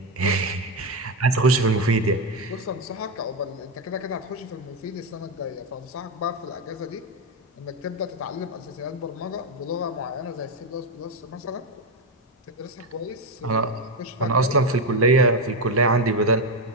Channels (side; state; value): both; normal; correlation 0.08